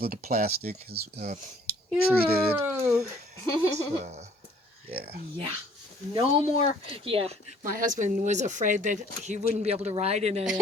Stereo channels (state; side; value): normal; both; correlation 0.58